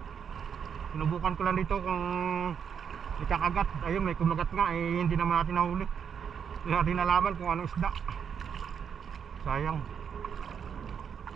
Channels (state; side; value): quieter; left; 7.4 dB